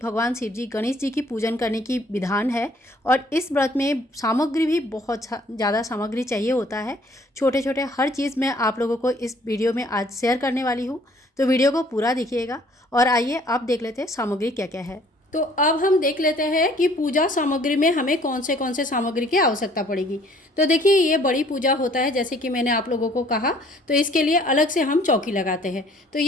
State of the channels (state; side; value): normal; both; correlation 0.58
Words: शिव जी, गणेश जी की पूजन करने की विधान है। और इस व्रत में सामग्री भी बहुत ज़्यादा सामग्री चाहिए होता है। छोटे छोटे हर चीज़ मैं आप लोगों को इस वीडियो में आज शेयर करने वाली हूँ, तो वीडियो को पूरा देखिएगा। और आइए अब देख लेते हैं सामग्री क्या क्या है। तो अब हम देख लेते हैं कि पूजा सामग्री में हमें कौन से सामग्री की आवश्यकता पड़ेगी। तो देखिए, ये बड़ी पूजा होता है, जैसे कि मैंने आप लोगों को कहा, तो इसके लिए अलग से हम चौकी लगाते हैं। तो